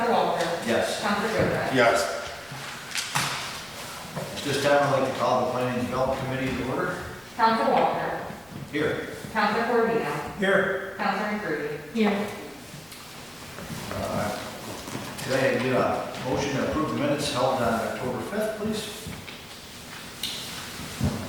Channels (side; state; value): left; noise; rumble, 29 dB below the sound